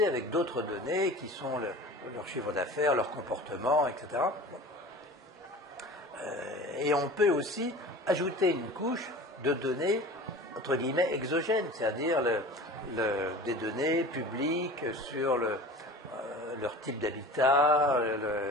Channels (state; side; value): normal; both; correlation 0.38